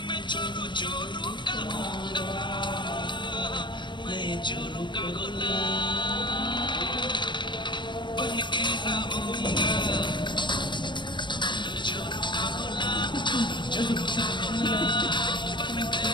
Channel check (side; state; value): right; late; 0.23 ms